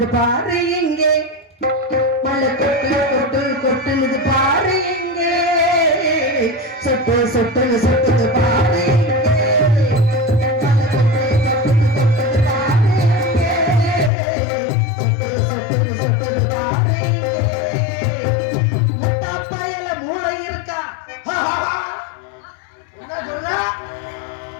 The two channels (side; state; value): right; drops out; at 14.1 s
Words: பாரு எங்கே, மழை கொட்டு கொட்டு கொட்டுனது பாரு எங்கே, சொட்டு சொட்டு சொட்டுது பாரு முட்டாப்பயல